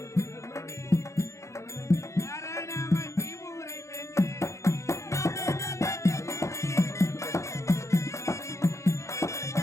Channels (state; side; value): late; right; 0.14 ms